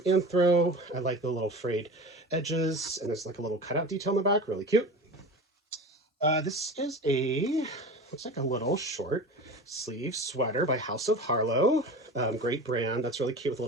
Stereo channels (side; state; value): both; normal; correlation 0.33